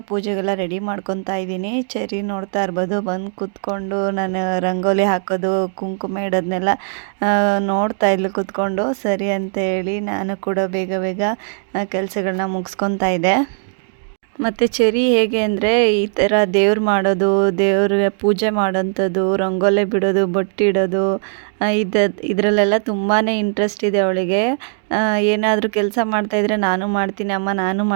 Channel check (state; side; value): silent; left; digital silence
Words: ಪೂಜೆಗೆಲ್ಲ ರೆಡಿ ಮಾಡ್ಕೊತಾ ಇದ್ದೀನಿ. ಚೆರಿ ನೋಡ್ತಾ ಇರ್ಬೋದು, ಬಂದು ಕೂತ್ಕೊಂಡು ನಾನು ರಂಗೋಲಿ ಹಾಕೋದು ಕುಂಕುಮ ಇಡೋದನ್ನೆಲ್ಲ ನೋಡ್ತಾ ಇದ್ಲು ಕೂತ್ಕೊಂಡು. ಸರಿ ಅಂತ ಹೇಳಿ ನಾನು ಕೂಡ ಬೇಗ ಕೆಲಸಗಳನ್ನ ಮುಗಿಸ್ಕೊತಾ ಇದ್ದೆ. ಮತ್ತು ಚೆರಿ ಹೇಗೆ ಅಂದರೆ ಈ ಥರ ದೇವ್ರು ಮಾಡೋದು, ದೇವ್ರಿಗೆ ಪೂಜೆ ಮಾಡೋಂಥದ್ದು, ರಂಗೋಲಿ ಬಿಡೋದು, ಬೊಟ್ಟಿಡೋದು, ಇದರಲ್ಲೆಲ್ಲ ತುಂಬಾ ಇಂಟ್ರೆಸ್ಟ್ ಇದೆ ಅವಳಿಗೆ. ಏನಾದರೂ ಕೆಲಸ ಮಾಡ್ತಾಯಿದ್ರೆ ನಾನು ಮಾಡ್ತೀನಿ ಅಮ್ಮ, ನಾನು